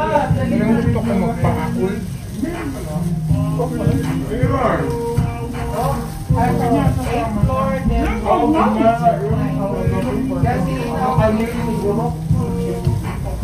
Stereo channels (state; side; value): identical; both; correlation 1.00